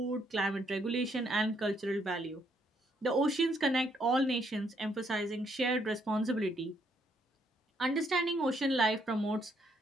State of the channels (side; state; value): both; normal; correlation 0.72